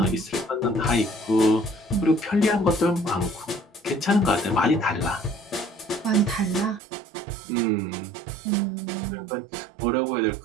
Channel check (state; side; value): drops out; left; at 6.8 s